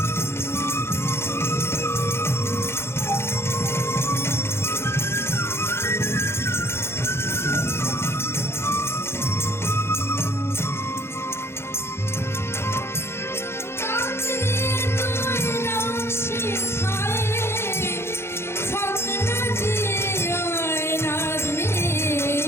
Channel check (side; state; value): right; late; 0.12 ms